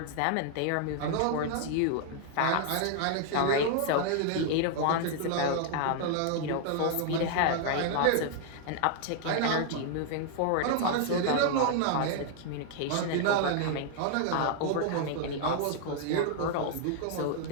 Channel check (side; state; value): both; different; correlation 0.00